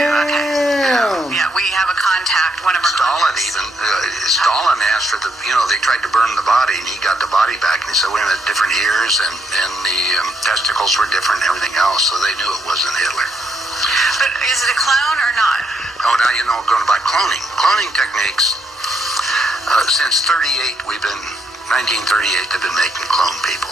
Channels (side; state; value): both; normal; correlation 0.76